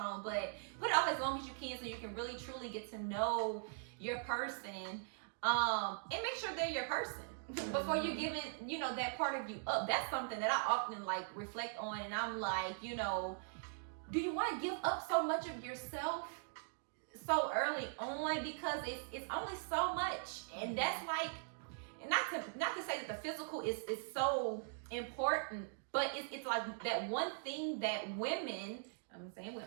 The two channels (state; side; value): silent; left; digital silence